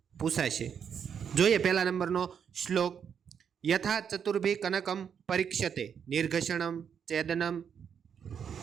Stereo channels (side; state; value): left; quieter; 7.6 dB